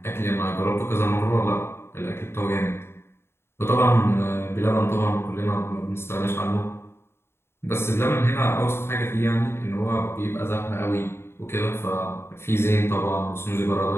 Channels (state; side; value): late; right; 0.12 ms